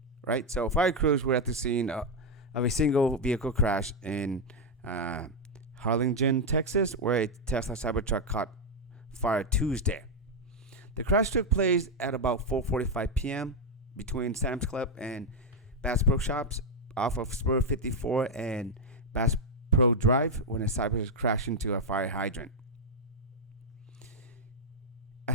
right? So fire crews were at the scene of a single vehicle crash in Harlingen, Texas, where a Tesla Cybertruck caught fire Tuesday. The crash took place at about 4:45 p.m. between Sam's Club and Bass Pro Shops off of Spur 54 and Bass Pro Drive when a Cybertruck crashed into a fire hydrant.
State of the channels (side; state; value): both; normal; correlation 0.02